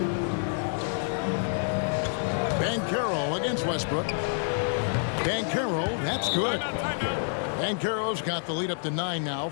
Banchero against Westbrook. Banchero, that's good. Banchero's got the lead up to 9 now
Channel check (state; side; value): silent; right; 59 dB below the other